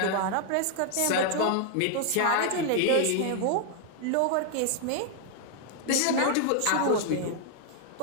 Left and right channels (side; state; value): both; different; correlation 0.00